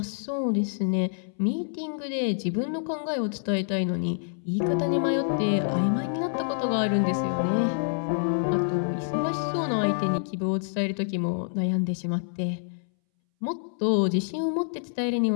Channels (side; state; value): right; silent; 60 dB below the other